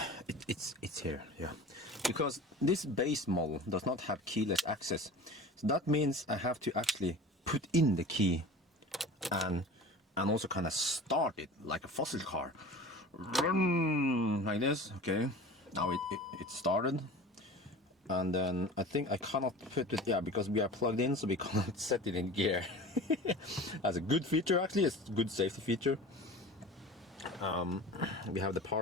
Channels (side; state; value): both; normal; correlation 0.38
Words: It's here, yeah. Because this base model does not have keyless access, so that means I have to actually put in the key and also kind of start it like a fossil car. Like this. Okay, now it started. And then I think I cannot put it, yeah, because we are plugged in, so we cannot set it in gear. That's a good feature, actually. It's a good safety feature. We have the